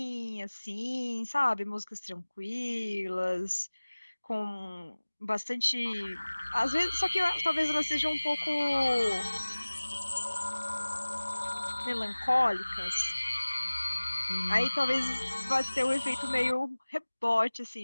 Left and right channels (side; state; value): both; inverted; correlation -1.00